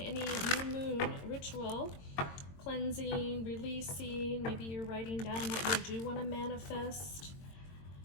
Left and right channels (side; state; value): right; late; 22 ms